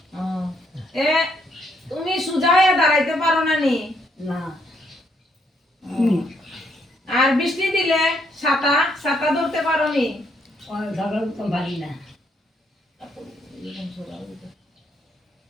তুমি সোজা হয়ে দাঁড়াইতে পারো না নি? না। আর বৃষ্টি দিলে ছাতা ছাতা ধরতে পারো নি? পারি না।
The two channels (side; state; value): both; normal; correlation 0.73